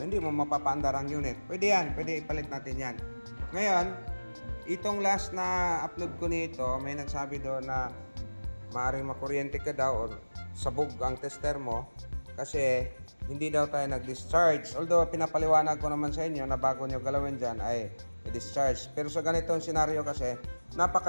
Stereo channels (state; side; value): inverted; both; correlation -1.00